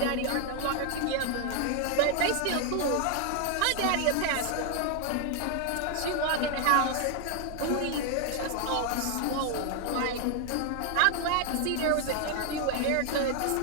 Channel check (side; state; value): both; different; correlation 0.00